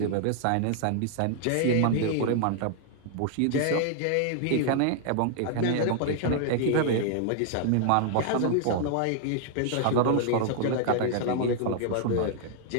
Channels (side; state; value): both; different; correlation -0.01